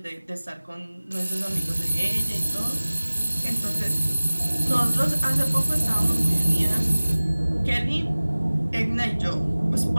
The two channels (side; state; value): both; inverted; correlation -1.00